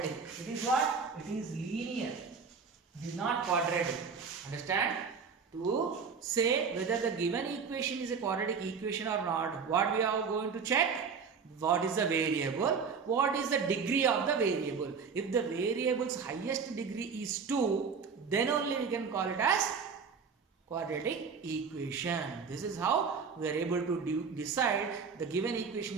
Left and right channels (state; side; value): quieter; left; 5.7 dB